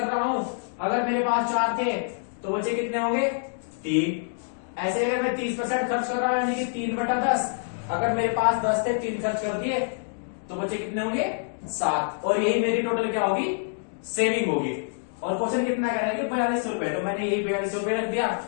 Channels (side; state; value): right; silent; digital silence